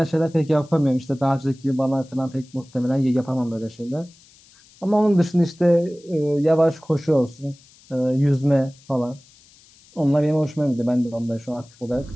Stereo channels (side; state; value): left; noise; hiss, 27 dB below the sound